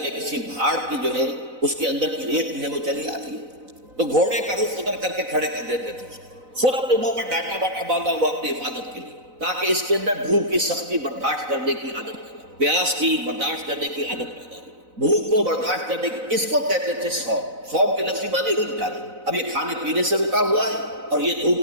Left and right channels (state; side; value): late; left; 4.0 ms